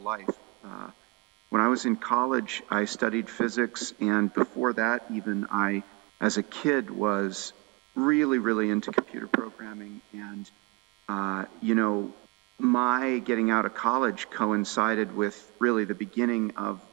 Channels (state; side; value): quieter; left; 24.1 dB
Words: life. When I was in college, I studied physics, and before that, even as a kid, was really, really into computer programming. And, my getting out of college coincided with really the beginning of